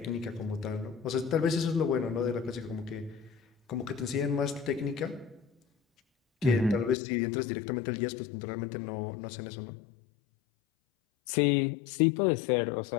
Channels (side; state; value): right; drops out; at 7.0 s